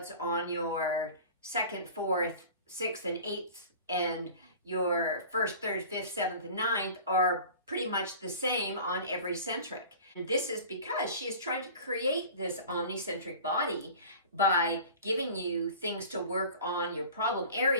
on your second, fourth, sixth, and eighth, and your first, third, fifth, seventh, and ninth are pretty much the same on every centric. And this is because she is trying to create this omnicentric body by giving you things to work on your problem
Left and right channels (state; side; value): inverted; both; correlation -0.41